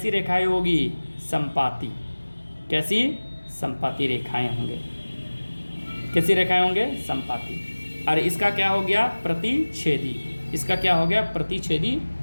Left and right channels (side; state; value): both; inverted; correlation -1.00